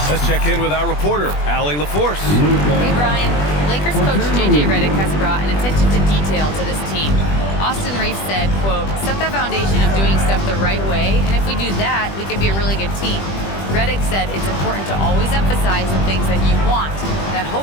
Let's check in with our reporter, Allie LaForce. Hey, Brian. Lakers coach J.J. Redick has brought an attention to detail to this team. Austin Reeves said, quote, set that foundation of doing stuff the right way, and if we do that, we can be a really good team. Redick said it's important to always emphasize the things that you want. That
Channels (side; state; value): right; late; 20 ms